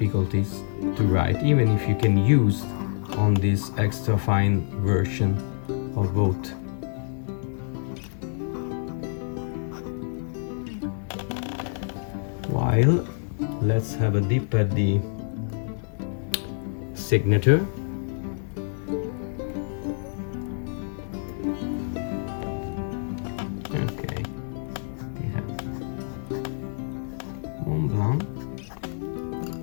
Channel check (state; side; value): silent; right; digital silence